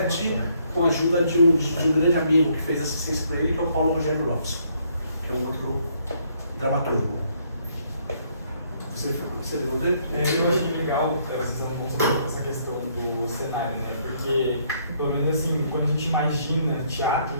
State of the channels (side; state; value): both; inverted; correlation -0.69